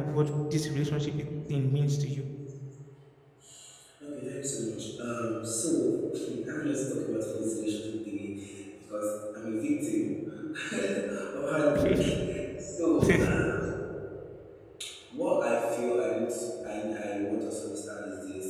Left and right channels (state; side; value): identical; both; correlation 1.00